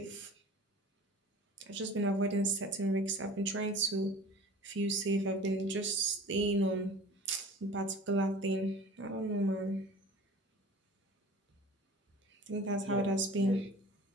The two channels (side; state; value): both; normal; correlation 0.42